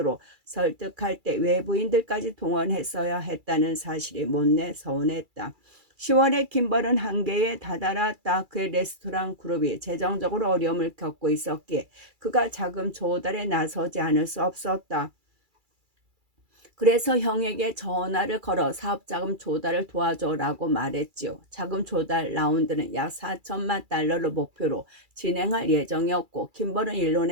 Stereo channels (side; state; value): left; late; 2.3 ms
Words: 설득할 때 외부인들까지 동원했어야 했다는 사실이 못내 서운했다. 10월에 킴벌은 한계에 다다랐다. 그의 레스토랑 그룹이 재정적으로 어려움을 겪고 있었기에 그가 자금 조달에 나서지 않을 수 없었다. 그래서 형에게 전화를 걸어 사업자금 조달을 도와줘라고 말했지요. 자금 조달 라운드는 약 4천만 달러를 목표로 진행할 예정이었고, 킴벌은